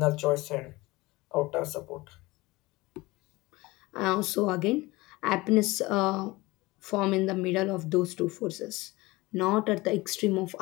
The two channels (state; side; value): quieter; right; 21.3 dB